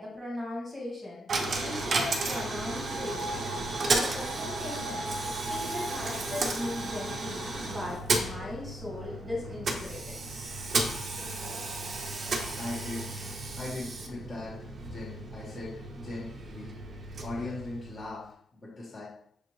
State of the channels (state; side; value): normal; both; correlation 0.80